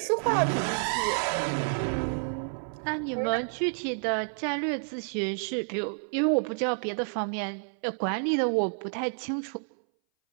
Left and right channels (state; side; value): silent; left; 58 dB below the other